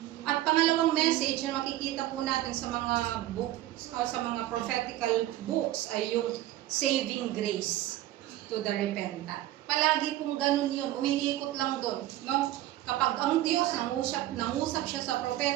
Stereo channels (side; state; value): left; quieter; 14.7 dB